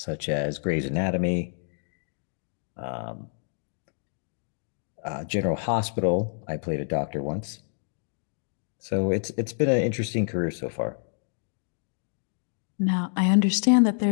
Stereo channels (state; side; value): silent; right; digital silence